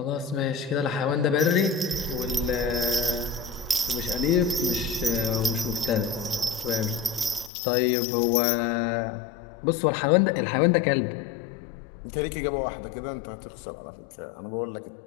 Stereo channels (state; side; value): drops out; right; at 7.5 s